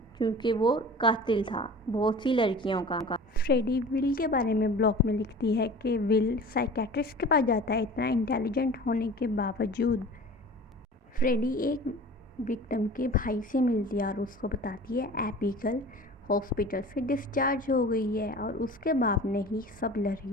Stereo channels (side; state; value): both; normal; correlation 0.40